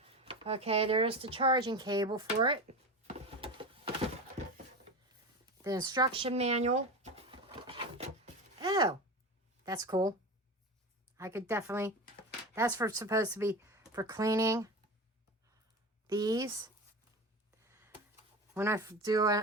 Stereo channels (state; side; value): normal; both; correlation 0.26